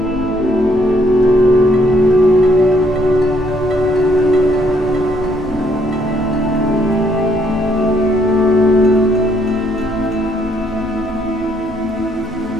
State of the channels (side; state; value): both; normal; correlation 0.69